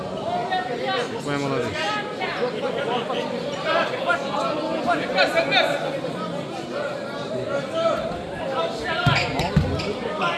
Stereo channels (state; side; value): identical; both; correlation 1.00